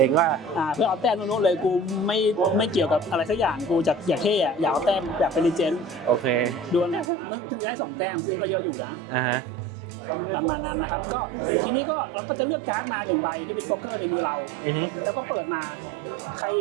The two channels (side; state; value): left; drops out; at 7.1 s